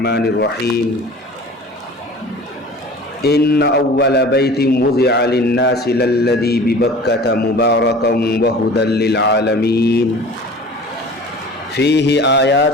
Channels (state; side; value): normal; both; correlation 0.42